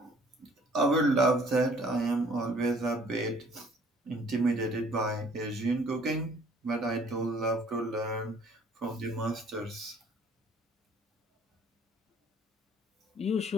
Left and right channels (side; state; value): both; normal; correlation 0.57